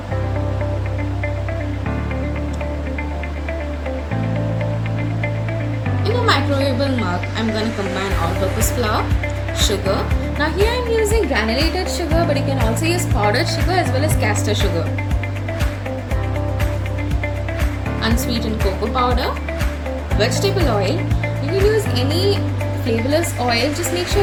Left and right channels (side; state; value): both; identical; correlation 1.00